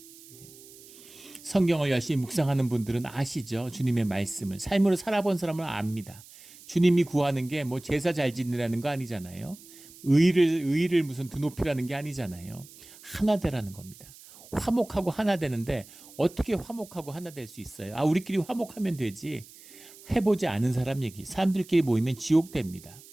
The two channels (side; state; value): right; noise; hiss, 20 dB below the sound